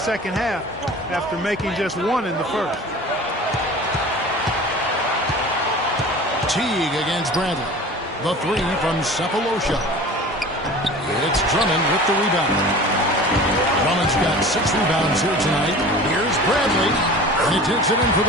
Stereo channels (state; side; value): normal; both; correlation 0.40